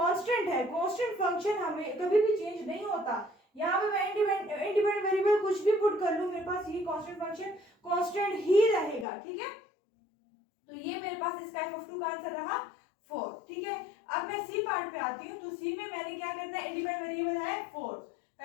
है, कांस्टेंट फंक्शन हमें कभी भी चेंज नहीं होता। यहाँ पे मैं इंडिपेंडेंट वेरिएबल कुछ भी पुट कर लूं, मेरे पास ये कांस्टेंट फंक्शन कांस्टेंट ही रहेगा, ठीक है। तो ये मेरे पास इसका f ऑफ 2 का आंसर रहा 4, ठीक है। अब मैं सी पार्ट पे आती हूँ। तो सी में मैंने क्या करना है, इंडिपेंडेंट वेरिएबल है 4।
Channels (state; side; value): drops out; right; at 9.1 s